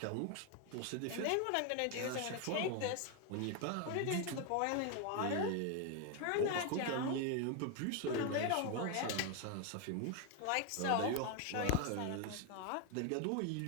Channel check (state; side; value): different; both; correlation 0.01